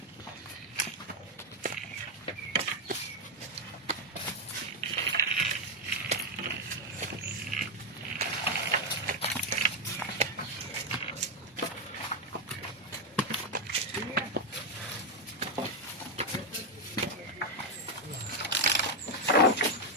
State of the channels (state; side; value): normal; both; correlation 0.03